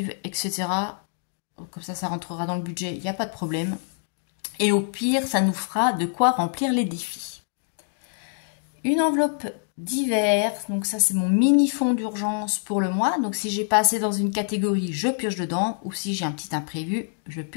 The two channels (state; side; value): silent; right; 62 dB below the other